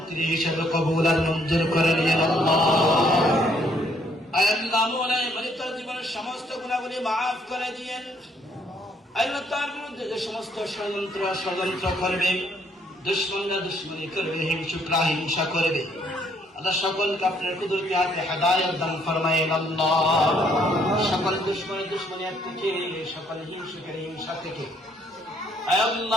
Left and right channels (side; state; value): both; normal; correlation 0.67